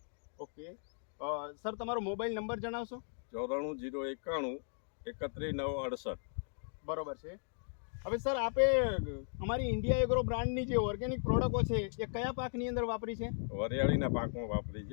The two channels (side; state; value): right; silent; digital silence